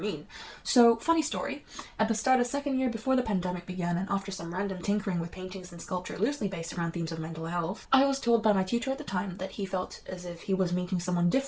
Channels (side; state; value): both; identical; correlation 1.00